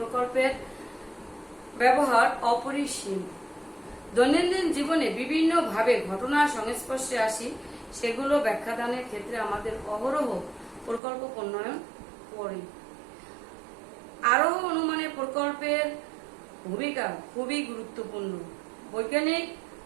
ব্যবহার অপরিসীম। দৈনন্দিন জীবনে বিভিন্ন ভাবে ঘটনার সংস্পর্শে আসি, সেগুলো ব্যাখ্যাদানের ক্ষেত্রে আমাদের অহরহ প্রকল্প প্রণয়ন করে। আরোহ অনুমানের প্রকল্পের ভূমিকা খুবই গুরুত্বপূর্ণ।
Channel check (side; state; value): left; drops out; at 11.0 s